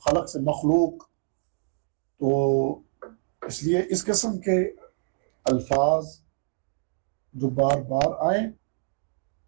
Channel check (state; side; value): silent; left; digital silence